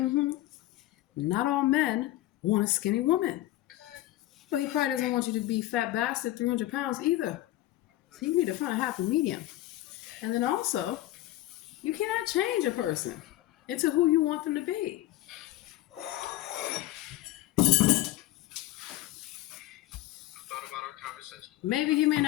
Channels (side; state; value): right; quieter; 15.7 dB